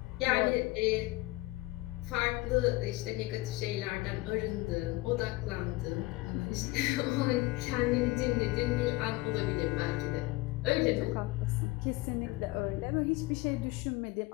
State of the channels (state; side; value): quieter; right; 20.6 dB